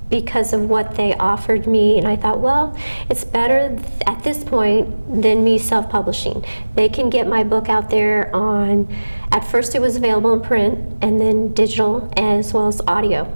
because of what they offered me, and I thought, well, it's better at this point than me self-publishing. They can get my book out there on, at first it was available in print, and then digital as well as audio.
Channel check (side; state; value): both; inverted; correlation -1.00